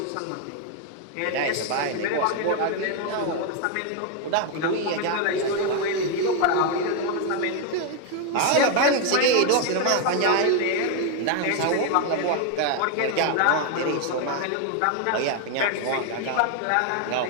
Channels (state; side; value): different; both; correlation 0.01